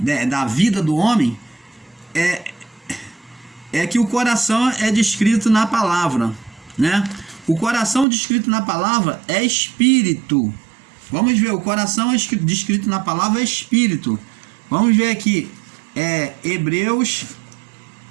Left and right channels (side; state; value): left; drops out; at 8.1 s